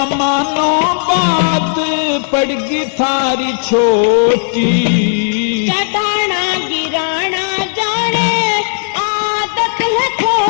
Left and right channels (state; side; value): silent; right; digital silence